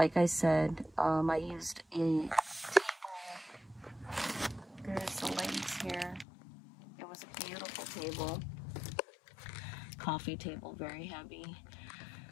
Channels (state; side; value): drops out; right; at 6.2 s